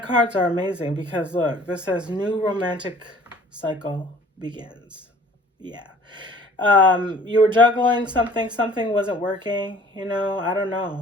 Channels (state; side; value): normal; both; correlation 0.52